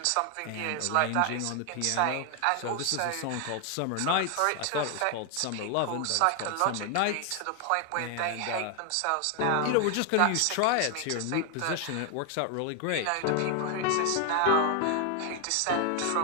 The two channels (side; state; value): both; different; correlation 0.01